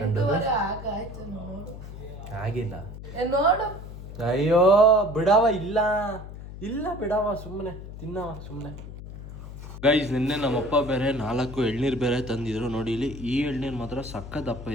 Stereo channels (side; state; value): left; noise; hum, 12 dB below the sound